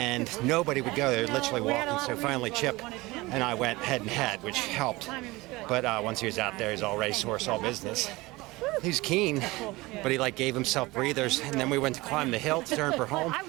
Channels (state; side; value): quieter; left; 21.3 dB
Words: nobody would go. They were literally walking. So finally, Chip and I went head and head, which helped. But once he was out there, he's all racehorse, all business. He's keen, but he gave himself breathers, and then we went to climb the hill to turn for home,